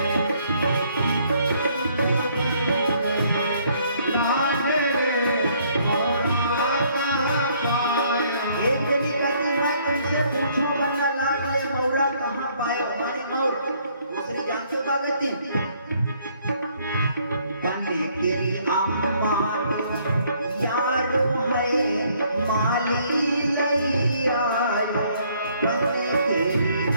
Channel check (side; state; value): both; inverted; correlation -0.65